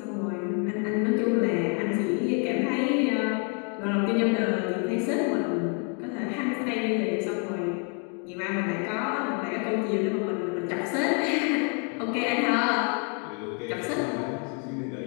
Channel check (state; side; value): quieter; right; 38.6 dB